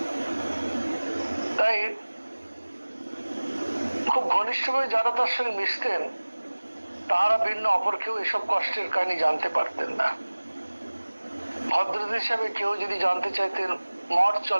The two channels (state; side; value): inverted; both; correlation -1.00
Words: তাই খুব ঘনিষ্ঠভাবে যারা তার সঙ্গে মিশতেন তারা ভিন্ন অপর কেউ এসব কষ্টের কাহিনী জানতে পারতেন না। ভদ্রতা হিসাবে কেউ যদি জানতে চাইতেন মঠ